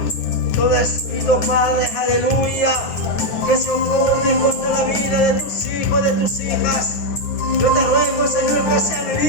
todo espíritu, Padre, aleluya, que se opone contra la vida de tus hijos, de tus hijas. Yo te ruego, Señor, que sean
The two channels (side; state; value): right; late; 9.5 ms